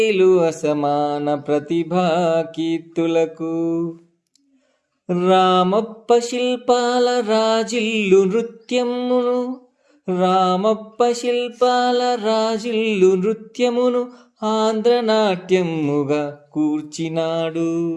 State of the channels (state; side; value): identical; both; correlation 1.00